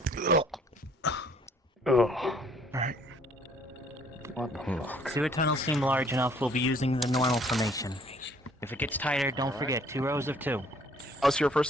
Oh. Alright. What the fuck? Sewer tunnels seem large enough, we'll be using the normal formation. If it gets tighter, don't forget, 2 rows of 2. Pause here for a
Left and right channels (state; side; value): normal; both; correlation 0.60